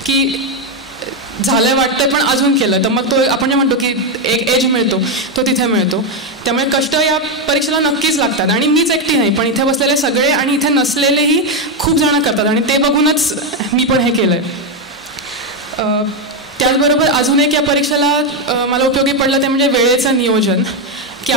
की झालंय वाटतंय पण अजून केलं तर मग तो आपण जे म्हणतो की एक एज मिळतो तो तिथे मिळतो. त्यामुळे कष्ट या परीक्षेला नक्कीच लागतात. आणि मीच एकटी नाही, पण इथे बसलेले सगळे आणि इथे नसलेलेही खूप जण करतात आणि ते बघूनच मी पण हे केलं आहे. त्याचबरोबर अजून एक या परीक्षेला मला उपयोगी पडलं ते म्हणजे वेळेचं नियोजन. की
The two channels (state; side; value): normal; both; correlation 0.06